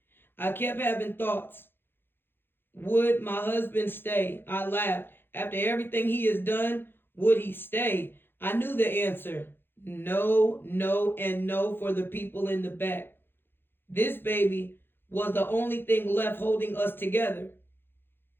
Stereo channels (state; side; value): late; right; 0.10 ms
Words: I kept having thoughts. Would my husband stay? I laughed. After everything he has done, would he stay? I knew the answer. No, no, and no for the people in the back. This baby was the only thing left holding us together.